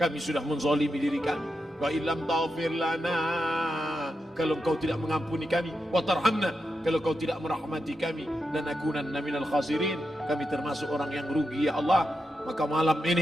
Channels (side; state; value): both; normal; correlation 0.87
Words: sudah menzalimi diri kami. Wa illam taghfir lana, kalau kau tidak mengampuni kami, wa tarhamna, kalau kau tidak merahmati kami, dan akunanna minal khasirin, kami termasuk orang yang rugi ya Allah. Maka malam